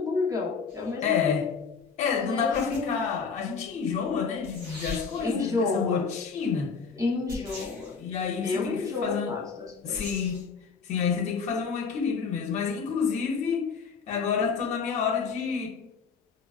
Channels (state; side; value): quieter; right; 5.4 dB